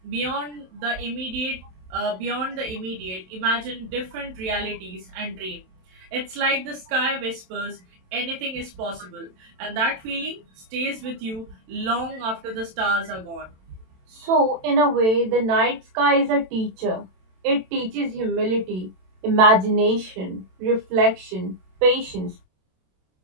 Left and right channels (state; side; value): late; left; 27 ms